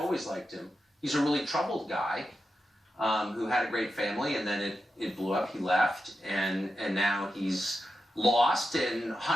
liked him. He's a really troubled guy who had a great family, and then it blew up. He left, and now he's lost and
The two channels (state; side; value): normal; both; correlation 0.89